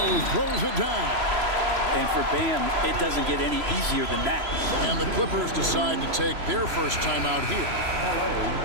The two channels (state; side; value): late; left; 3.0 ms